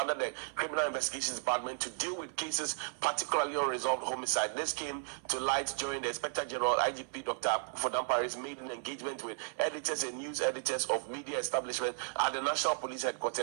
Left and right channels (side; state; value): left; silent; 55 dB below the other